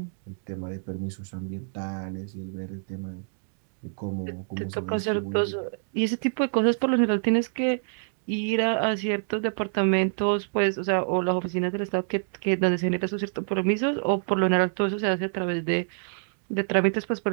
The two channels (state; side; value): silent; left; digital silence